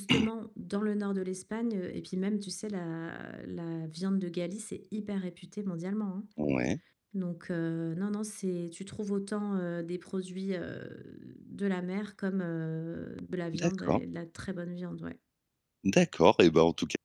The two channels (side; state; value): both; identical; correlation 1.00